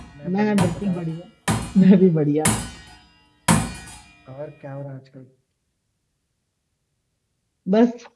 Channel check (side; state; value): both; identical; correlation 1.00